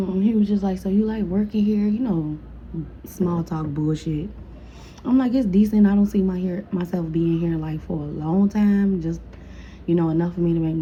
he was just like, "So you like working here?" Small talk bullshit. I'm like, "It's decent. I don't see myself being here like for a long time. Just, enough for me to make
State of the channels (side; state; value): both; identical; correlation 1.00